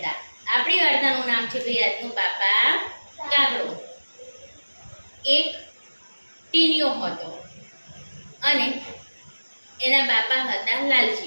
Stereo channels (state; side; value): inverted; both; correlation -1.00